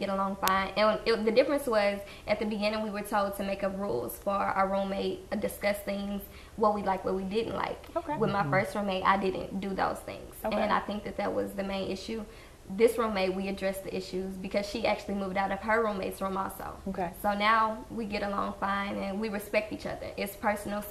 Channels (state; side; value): identical; both; correlation 1.00